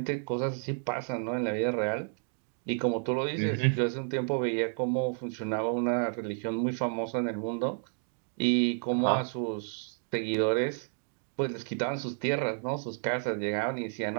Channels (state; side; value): silent; left; 57 dB below the other